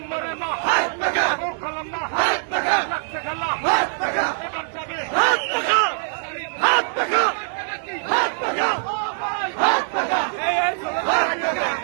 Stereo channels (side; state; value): left; silent; digital silence